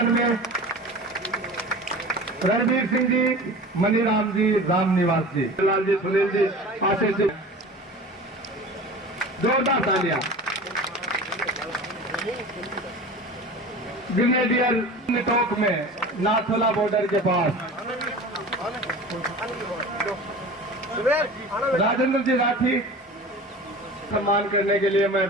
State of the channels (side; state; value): both; normal; correlation 0.37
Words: में रणवीर सिंह जी, मनीराम जी, रामनिवास जी, लाल जी, सुनील जी, आशीष जी, जोरदार तालियां। ग्रेनेडियर टोक में नाथोला बॉर्डर के पास राजेंद्र जी राठी सम्मान करने के लिए मैं